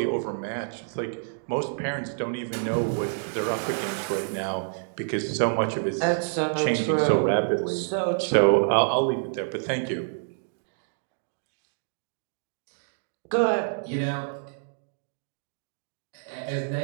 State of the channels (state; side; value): silent; left; digital silence